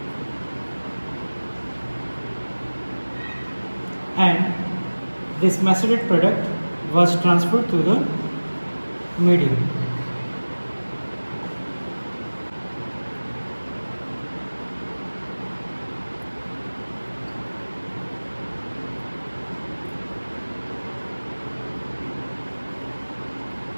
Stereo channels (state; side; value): inverted; both; correlation -1.00